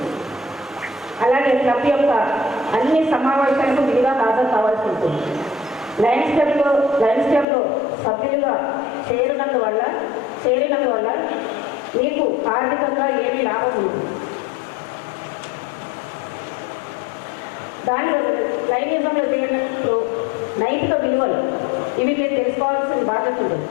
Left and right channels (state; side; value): drops out; right; at 7.5 s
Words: అలాగే క్లబ్ యొక్క అన్ని సమావేశాలకు విధిగా హాజరు కావాల్సి ఉంటుంది. లయన్స్ క్లబ్లో సభ్యులుగా చేరినందువల్ల మీకు ఆర్థికంగా ఏమీ లాభం ఉంటుంది. దానిలో లైనిజంలో చేరినప్పుడు నైతిక విలువలు, ఇవి మీరు తెలుసుకోవాల్సిన బాధ్యత ఉంటుంది.